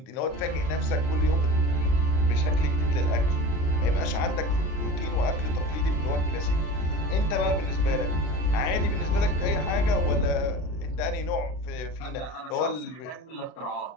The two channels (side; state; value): right; late; 39 ms